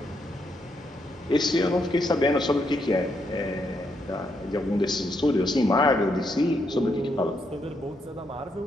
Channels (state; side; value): normal; both; correlation 0.78